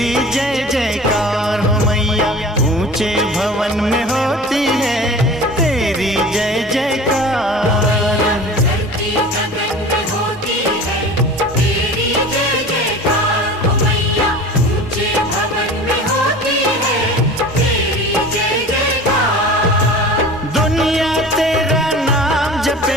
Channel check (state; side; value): normal; both; correlation 0.39